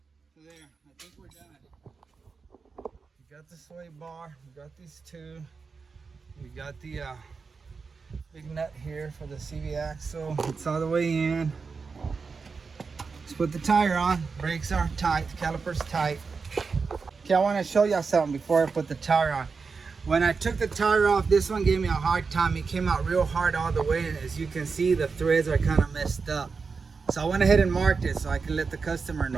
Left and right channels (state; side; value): quieter; left; 4.9 dB